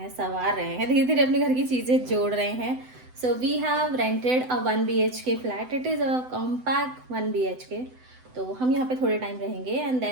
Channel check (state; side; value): late; left; 7.9 ms